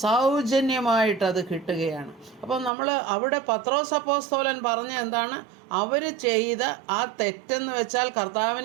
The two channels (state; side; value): drops out; left; at 2.7 s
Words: സൗജന്യമായിട്ടത് കിട്ടുകയാണ്. അപ്പം നമ്മൾ അവിടെ പത്രോസ് അപ്പോസ്തലൻ പറഞ്ഞ എന്താണ്? അവർ ചെയ്ത ആ തെറ്റെന്ന് വെച്ചാൽ